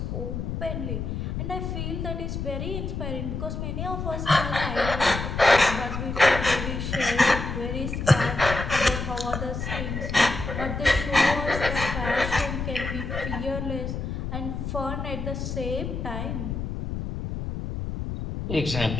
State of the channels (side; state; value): left; noise; rumble, 4 dB below the sound